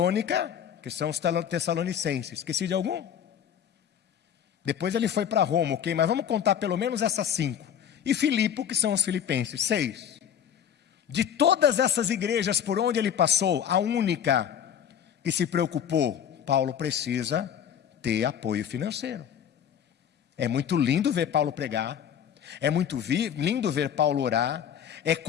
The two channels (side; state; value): right; quieter; 8.9 dB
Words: que são os Tessalonicenses. Esqueci de algum? Depois ele foi para Roma, ok? Mas vamos contar pelo menos essas 5. E Filipe, que são os Filipenses, 6. De todas essas igrejas por onde ele passou, a única que se preocupou, Paulo precisa ter apoio financeiro. É muito lindo ver Paulo pregar, é muito lindo ver Paulo orar, é